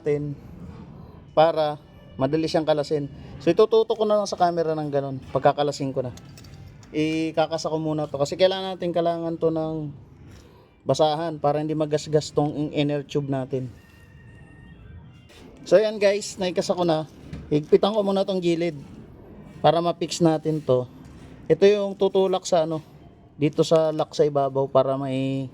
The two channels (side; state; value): both; identical; correlation 1.00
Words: para madali siyang kalasin. So itututok ko na lang sa camera ng ganun. Pagkakalasin ko na, ikakasa ko muna to kasi kailangan to ng basahan para hindi magasgas tong inner tube natin. So yan guys, naikasa ko na. Higpitan ko muna tong gilid para ma-fix natin to. Ito yung tutulak sa dito sa lock sa ibabaw para may